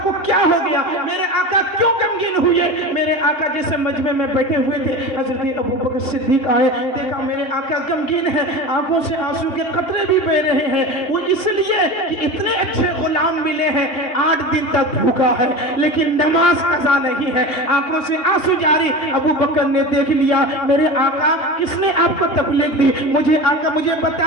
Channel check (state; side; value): late; right; 2.8 ms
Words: کو کیا ہو گیا؟ میرے آقا کیوں غمگین ہوئے؟ میرے آقا جیسے مجمع میں بیٹھے ہوئے تھے، حضرت ابوبکر صدیق آئے، دیکھا میرے آقا غمگین ہے، آنکھوں سے آنسو کے قطرے بھی بہ رہے ہیں، وہ اس لیے کہ اتنے اچھے غلام ملے ہیں، 8 دن تک بھوکا ہے لیکن نماز قضا نہیں ہے، آنکھوں سے آنسو جاری۔ ابوبکر نے دیکھ لیا میرے آقا کس نے آپ کو تکلیف دی، مجھے آقا مجھے